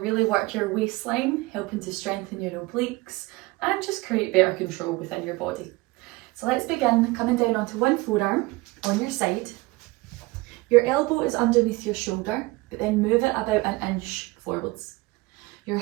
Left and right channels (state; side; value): quieter; left; 22.5 dB